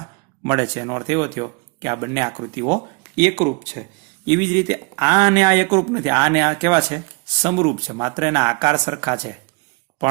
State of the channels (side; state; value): left; quieter; 30.3 dB